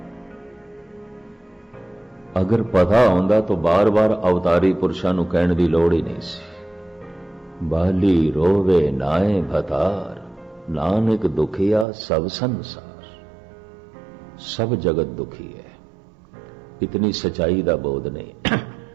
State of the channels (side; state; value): left; drops out; at 11.9 s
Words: अगर पता होंदा तो बार बार अवतारी पुरुषां नूं कहण दी लोड़ ही नहीं सी। बाली रोवे नाए भतार, नानक दुखिया सब संसार। सब जगत दुखी है, इतनी सच्चाई दा बोध नहीं।